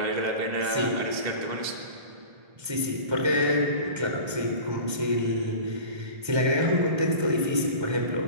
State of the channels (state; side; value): late; left; 1.3 ms